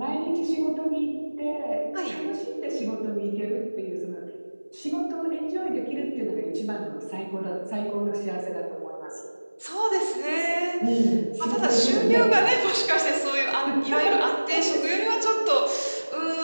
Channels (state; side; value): inverted; both; correlation -1.00